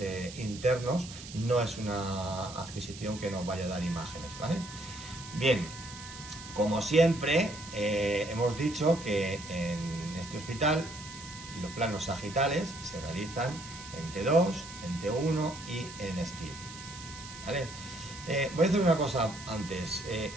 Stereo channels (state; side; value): noise; right; hiss, 14 dB below the sound